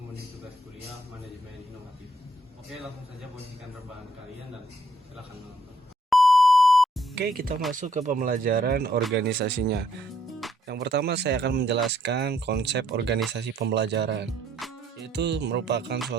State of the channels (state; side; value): normal; both; correlation 0.68